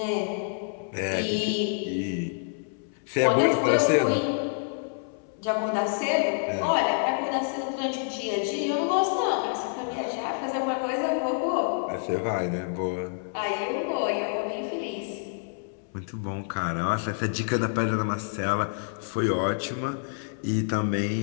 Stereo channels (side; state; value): right; silent; 60 dB below the other